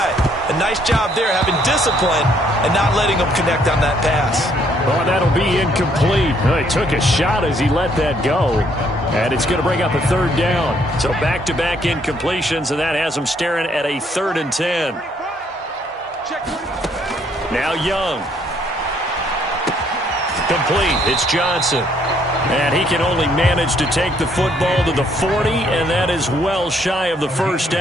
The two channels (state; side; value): normal; both; correlation 0.67